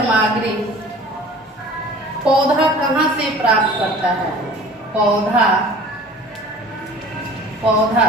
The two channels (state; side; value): normal; both; correlation 0.45